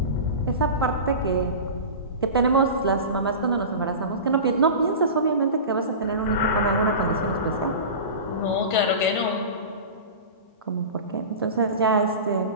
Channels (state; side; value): inverted; both; correlation -0.30